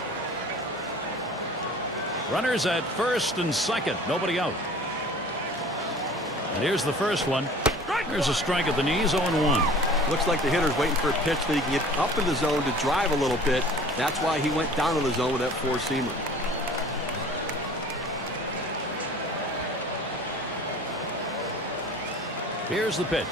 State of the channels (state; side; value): normal; both; correlation 0.45